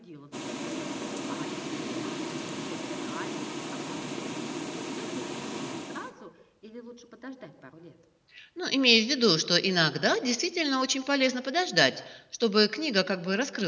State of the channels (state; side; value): identical; both; correlation 1.00